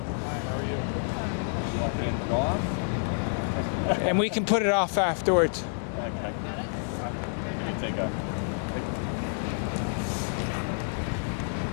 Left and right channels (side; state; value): right; silent; digital silence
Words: are you? You want to hand it off? And we can put it off afterwards. Okay. You can take a.